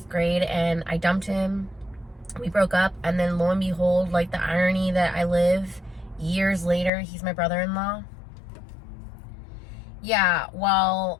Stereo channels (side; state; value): right; drops out; at 6.9 s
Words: grade, and I dumped him. We broke up, and then lo and behold, like, the irony that I live, years later, he's my brother-in-law. Yeah, well,